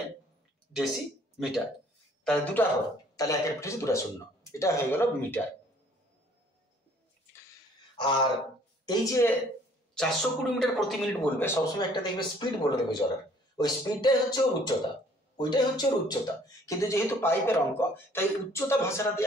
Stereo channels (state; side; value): normal; both; correlation 0.58